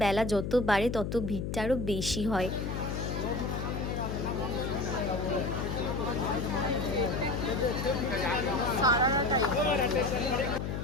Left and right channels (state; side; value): noise; left; hum, 3 dB below the sound